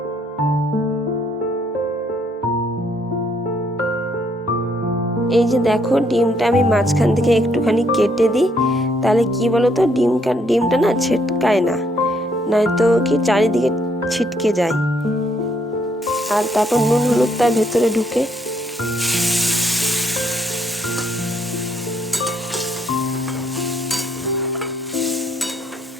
এই যে দেখো ডিমটা আমি মাঝখান থেকে একটুখানি কেটে দিই, তাহলে কি বলো তো ডিমটা না ছিটকায় না, নয়তো কি চারিদিকে ছিটকে যায়। আর তারপর নুন হলুদ তার ভেতরে ঢুকে।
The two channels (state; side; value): normal; both; correlation 0.70